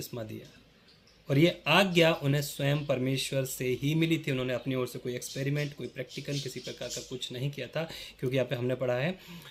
दिया और ये आज्ञा उन्हें स्वयं परमेश्वर से ही मिली थी। उन्होंने अपनी ओर से कोई एक्सपेरिमेंट, कोई प्रैक्टिकल किसी प्रकार का कुछ नहीं किया था, क्योंकि यहाँ पे हमने पढ़ा है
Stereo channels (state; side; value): identical; both; correlation 1.00